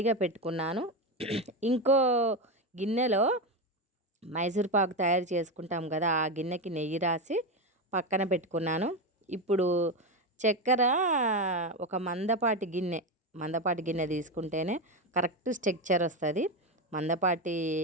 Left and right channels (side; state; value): both; normal; correlation 0.14